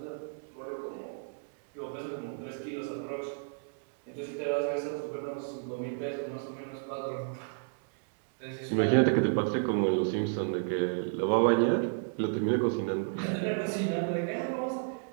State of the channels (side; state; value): left; silent; digital silence